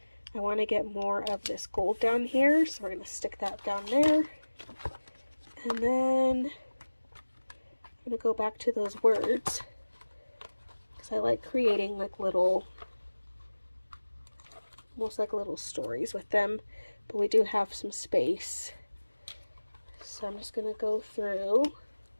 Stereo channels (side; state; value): both; inverted; correlation -1.00